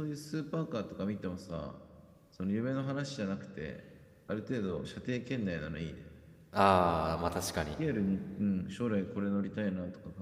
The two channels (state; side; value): identical; both; correlation 1.00